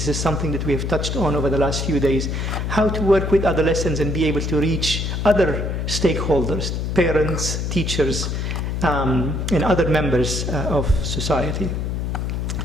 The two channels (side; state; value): left; noise; hum, 1 dB below the sound